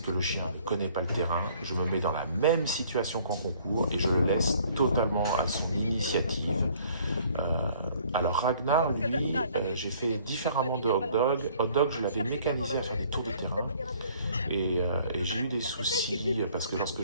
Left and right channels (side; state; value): both; inverted; correlation -0.58